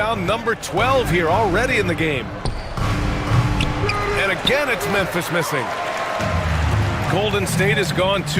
number 12 here already in the game. And again, it's Memphis missing. Golden State has gone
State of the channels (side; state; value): both; identical; correlation 1.00